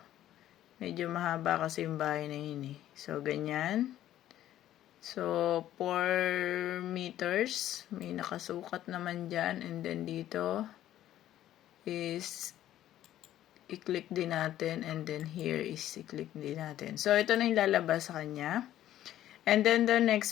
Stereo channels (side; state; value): right; quieter; 12.7 dB